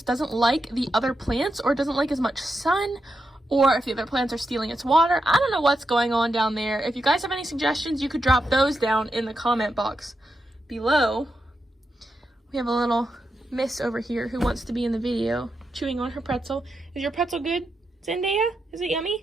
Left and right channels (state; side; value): normal; both; correlation 0.86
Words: doesn't like the other plants or doesn't like as much sun, or if the other plants are stealing its water. I don't know what's going on down there. If you guys have any suggestions, you could drop those down in the comment box below. We have a little miss over here who wants to be in the video, chewing on her pretzel. Is your pretzel good, Zendaya? Is it